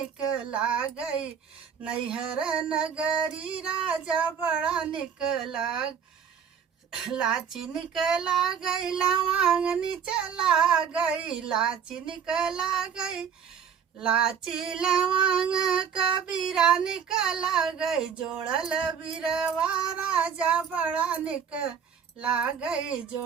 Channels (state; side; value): quieter; left; 7.3 dB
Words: गई, नैहर नगरी राजा बड़ा निकला। लाची निकला गई लवांग निचला गई, लाची निकला गई, लाची लवांग कबीरा निकला गई। जोड़ल बिरवा राजा बड़ा निकला गई,